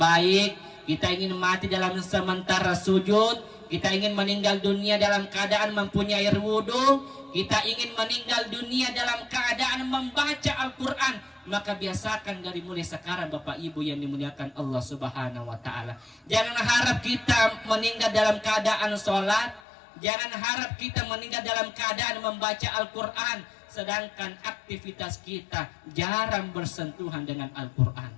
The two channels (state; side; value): drops out; right; at 19.6 s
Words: kita ingin mati dalam sementara sujud, kita ingin meninggal dunia dalam keadaan mempunyai air wudhu, kita ingin meninggal dunia dalam keadaan membaca Al-Quran, maka biasakan dari mulai sekarang Bapak Ibu yang dimuliakan Allah Subhanahu wa Ta'ala. Jangan harap kita meninggal dalam keadaan sholat, jangan harap kita meninggal dalam keadaan membaca Al-Quran, sedangkan aktivitas kita jarang bersentuhan dengan